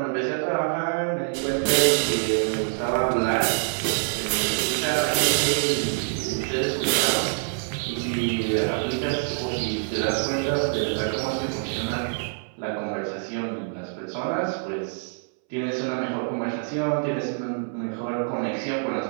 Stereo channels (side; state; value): left; silent; 61 dB below the other